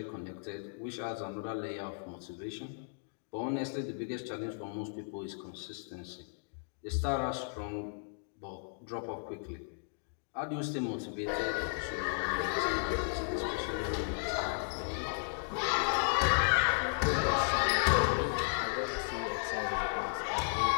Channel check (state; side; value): silent; right; digital silence